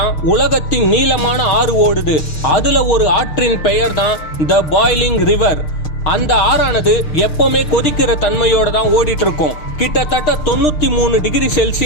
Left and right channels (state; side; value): late; right; 6.6 ms